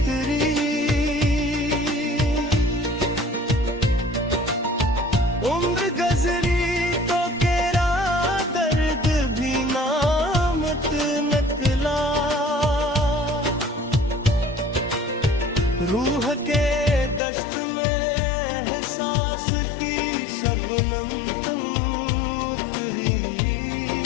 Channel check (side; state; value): right; drops out; at 17.2 s